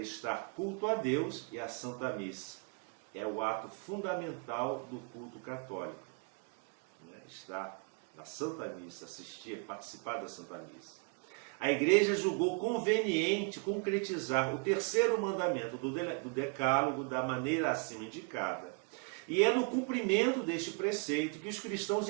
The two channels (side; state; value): left; quieter; 35.1 dB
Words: culto a Deus e à Santa Missa. É o ato fundamental do culto católico. Estar na Santa Missa, participar da Santa Missa. A Igreja julgou conveniente concretizar o terceiro mandamento do Decálogo da maneira acima indicada. E é no cumprimento deste preceito que os cristãos